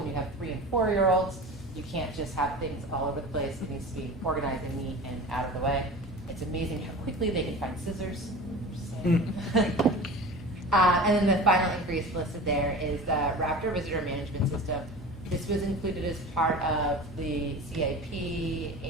you have 3- and 4-year-olds, you can't just have things all over the place. It needs to be organized and neat and out of the way. It's amazing how quickly they can find scissors. And then the final increase listed there is the Raptor Visitor Management System. This was included as part of the CIP,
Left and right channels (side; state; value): both; normal; correlation 0.35